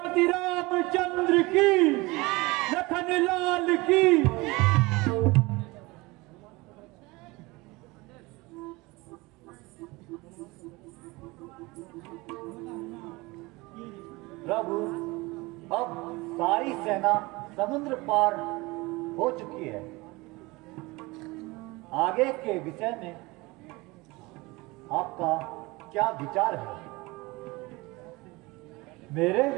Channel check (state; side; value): quieter; left; 23.1 dB